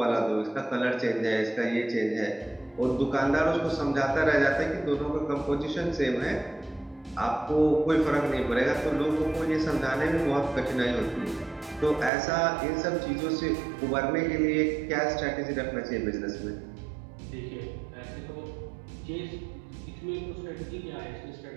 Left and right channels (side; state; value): left; drops out; at 12.1 s